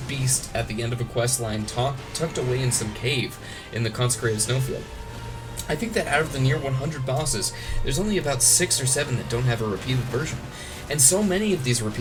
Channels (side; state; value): both; identical; correlation 1.00